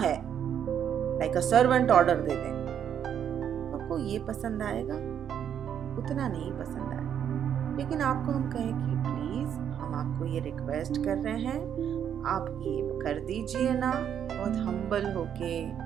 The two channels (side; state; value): left; quieter; 9.0 dB